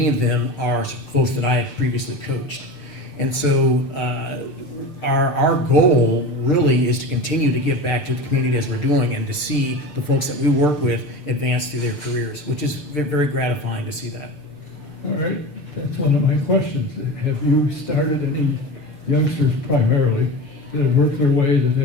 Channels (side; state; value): right; late; 6.7 ms